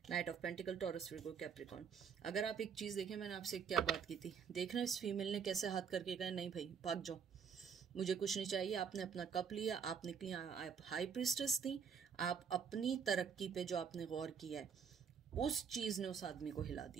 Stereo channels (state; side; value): quieter; left; 6.8 dB